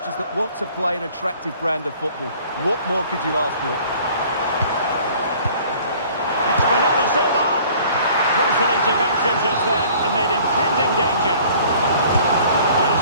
that want to play an attractive brand of football. What more could you ask for? Crucial intervention just then amid impending danger. Now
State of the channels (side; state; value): both; inverted; correlation -0.52